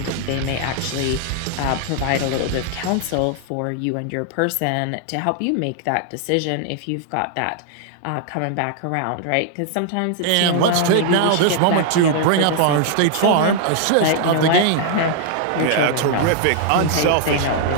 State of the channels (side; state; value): both; different; correlation -0.01